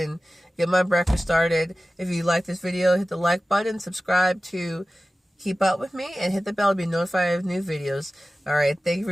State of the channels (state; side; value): normal; both; correlation 0.96